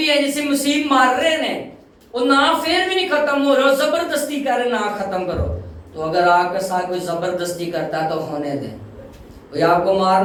ہے جسے مسیح مار رہے ہیں، وہ نام پھر بھی نہیں ختم ہو رہا، زبردستی کر رہے نام ختم کرو۔ تو اگر آپ کے ساتھ کوئی زبردستی کرتا ہے تو ہونے دیں۔ کوئی آپ کو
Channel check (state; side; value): identical; both; correlation 1.00